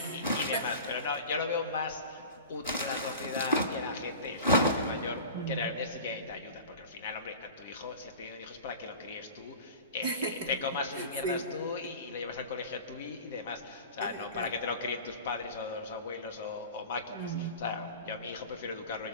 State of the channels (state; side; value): inverted; both; correlation -0.37